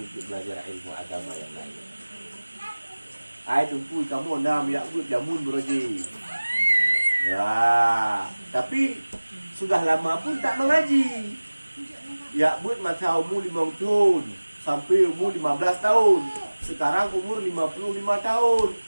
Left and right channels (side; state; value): both; inverted; correlation -1.00